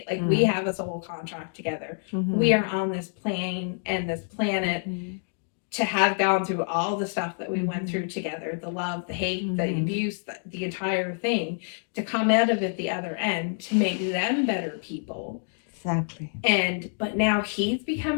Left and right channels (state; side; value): silent; right; 60 dB below the other